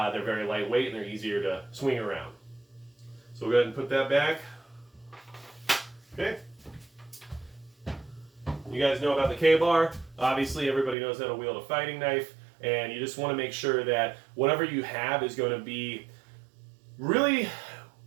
very lightweight and they're easier to swing around. So we'll go ahead and put that back. Okay. You guys know about the K-bar. Obviously everybody knows how to wield a fighting knife. And you just want to make sure that whatever you have is going to be really,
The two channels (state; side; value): drops out; left; at 11.0 s